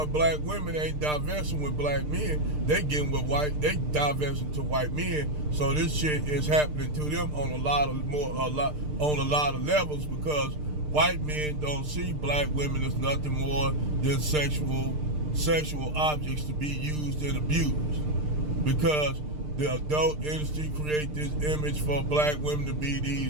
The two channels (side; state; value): left; late; 6.6 ms